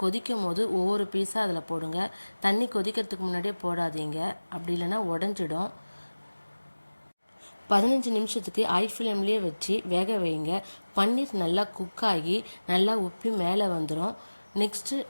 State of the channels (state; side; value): inverted; both; correlation -1.00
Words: கொதிக்கும் போது ஒவ்வொரு பீஸாக அதில் போடுங்க. தண்ணி கொதிக்கிறதுக்கு முன்னாடியே போடாதீங்க, அப்படி இல்லைன்னா உடஞ்சிடும். 15 நிமிஷத்துக்கு ஹை ஃப்ளேம்லேயே வச்சு வேக வைங்க. பன்னீர் நல்லா குக் ஆகி நல்லா உப்பி மேலே வந்துடும். நெக்ஸ்ட்டு